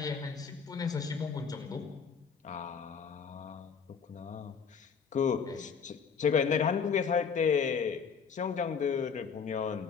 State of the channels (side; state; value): right; quieter; 6.3 dB